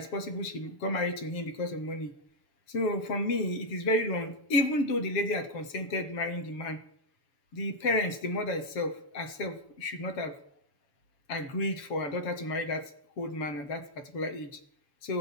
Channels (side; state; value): right; late; 7.0 ms